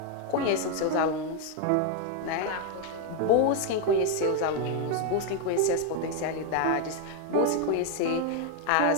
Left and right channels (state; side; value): different; both; correlation 0.01